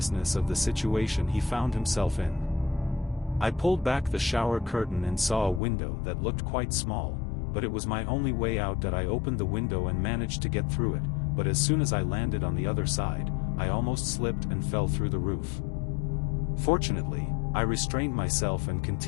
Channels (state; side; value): drops out; right; at 5.6 s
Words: of the situation he found himself in. I pulled back the shower curtain and saw a window that looked quite small, but it was my only way out. That I opened the window and managed to get through it, but as soon as I landed on the other side, I almost slipped and fell through the roof. Fortunately, I restrained myself and